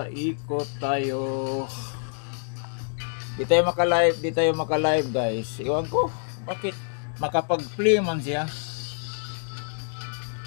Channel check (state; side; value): silent; right; digital silence